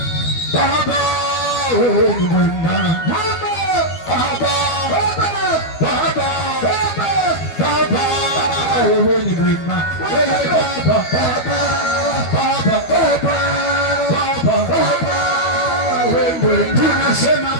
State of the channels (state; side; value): late; right; 12 ms